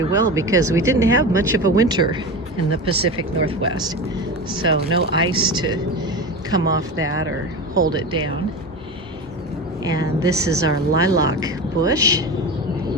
well because we didn't have much of a winter in the Pacific Northwest. So no ice to come off that or hold it down. And this is our lilac bush.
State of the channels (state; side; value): normal; both; correlation 0.26